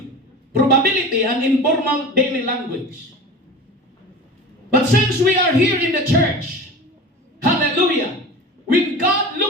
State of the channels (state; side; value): normal; both; correlation 0.34